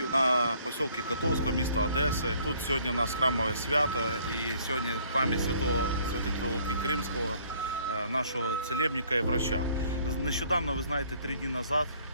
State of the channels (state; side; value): inverted; both; correlation -0.61